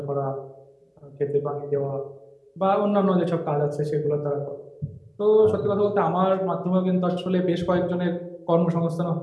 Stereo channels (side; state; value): both; identical; correlation 1.00